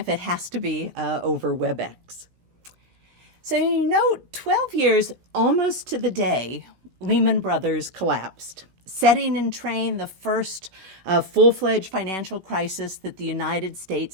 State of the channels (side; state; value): left; late; 17 ms